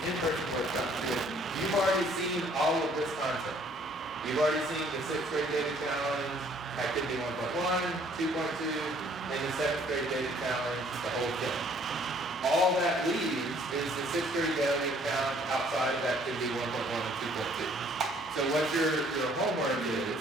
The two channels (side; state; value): both; normal; correlation 0.60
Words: in-person workshop materials, you've already seen all of this content. You've already seen the 6th grade data challenge, activity 1.1, 2.2, and the 7th grade data challenge, the whole thing. All that leaves is the 6th grade data challenge outside of activity 1.1 and 2.2. So what your homework is